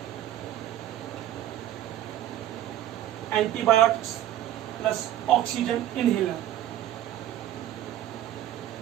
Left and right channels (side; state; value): left; quieter; 12.5 dB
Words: antibiotics plus oxygen inhaler.